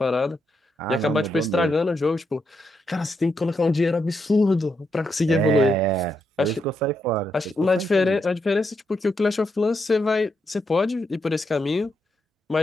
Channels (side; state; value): both; normal; correlation 0.81